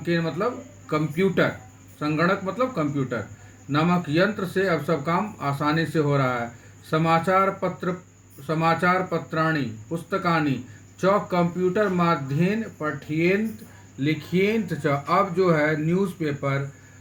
के मतलब कंप्यूटर, संगणक मतलब कंप्यूटर नामक यंत्र से अब सब काम आसानी से हो रहा है। समाचार पत्राणि पुस्तकानि च कंप्यूटर माध्येन पठ्येन्त लिख्येन्त च, अब जो है न्यूज़पेपर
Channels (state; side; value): identical; both; correlation 1.00